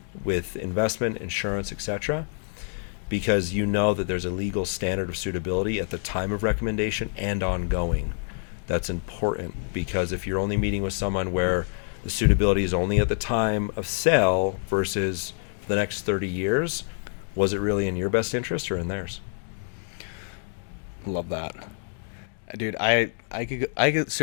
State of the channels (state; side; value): silent; right; 60 dB below the other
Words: with investment, insurance, etc. Because you know that there's a legal standard of suitability at the time of recommendation and ongoing. That's important because if you're only meeting with someone where the suitability is only at the time of sale versus for the next 30 years, was it really in your best interest or in theirs? Love that. Dude, I could